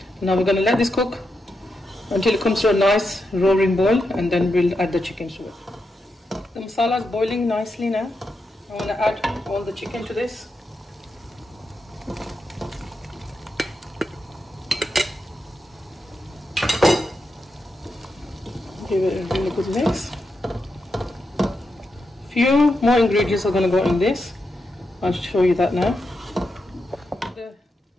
Now we're going to let this cook until it comes to a nice roaring boil, and then we'll add the chicken to it. The masala is boiling nicely now. I want to add all the chicken to this. Give it a really good mix. Few more ingredients are going to go in this. I'll show you that now. The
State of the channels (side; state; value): both; normal; correlation 0.86